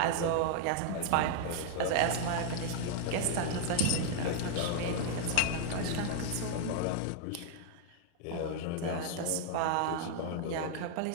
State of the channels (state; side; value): different; both; correlation -0.01